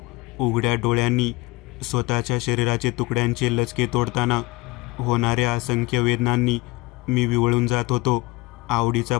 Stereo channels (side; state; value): right; quieter; 22.1 dB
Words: उघड्या डोळ्यांनी स्वतःच्या शरीराचे तुकड्यांचे लचके तोडताना होणाऱ्या असंख्य वेदनांनी मी विवळून जात होतो. आवडीचा